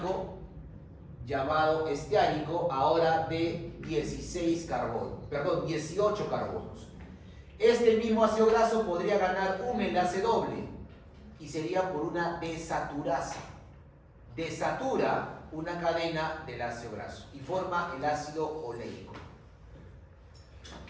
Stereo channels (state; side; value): identical; both; correlation 1.00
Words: ahora de 18 carbonos. Este mismo ácido graso podría ganar un enlace doble y sería por una desaturasa. Desatura una cadena del ácido graso y forma el ácido oleico.